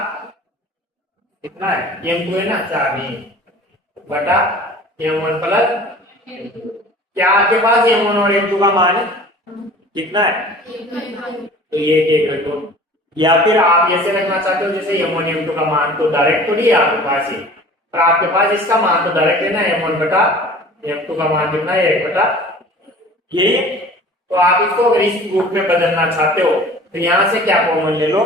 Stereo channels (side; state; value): both; normal; correlation 0.44